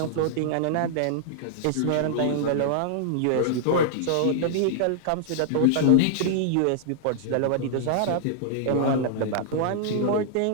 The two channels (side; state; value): both; different; correlation -0.01